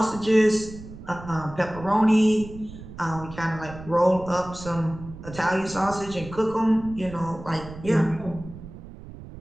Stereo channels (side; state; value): right; noise; rumble, 14 dB below the sound